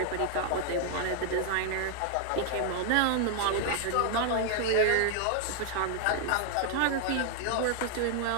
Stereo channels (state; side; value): different; both; correlation 0.00